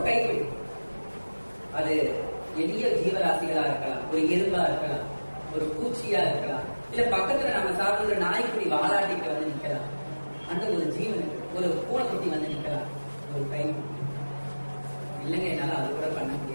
கைப்பிடி. அது எளிய ஜீவராசிகளா இருக்கலாம், ஒரு எறும்பா இருக்கலாம், ஒரு பூச்சியா இருக்கலாம், இல்ல பக்கத்துல நம்ம சாப்பிடுற நாய்க்குடி வாலாட்டிட்டு நிக்கலாம். அந்த ஒரு ஜீவனுக்கு ஒரு பூனைக்குட்டி நிக்கலாம். ஒரு கை இல்லைங்க, என்னால அது கூட பண்ண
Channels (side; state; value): both; inverted; correlation -1.00